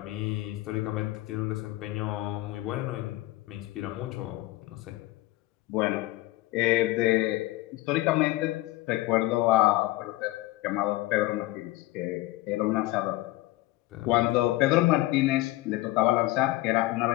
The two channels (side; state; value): right; quieter; 18.4 dB